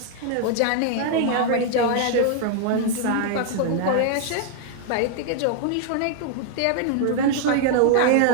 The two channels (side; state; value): both; different; correlation 0.00